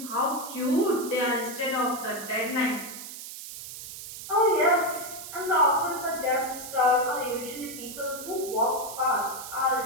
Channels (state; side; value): noise; right; hiss, 11 dB below the sound